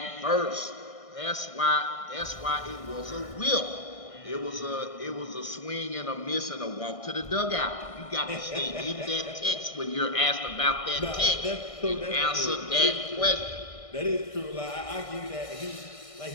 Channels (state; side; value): late; right; 1.6 ms